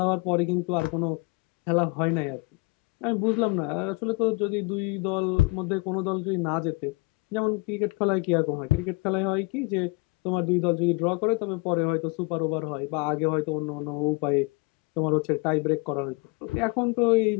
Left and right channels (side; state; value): right; quieter; 26.3 dB